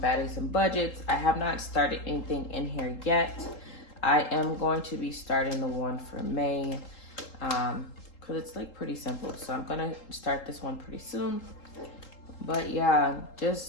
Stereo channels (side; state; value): right; late; 3.8 ms